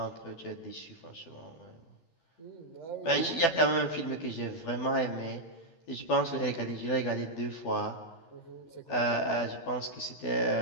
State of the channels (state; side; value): late; right; 12 ms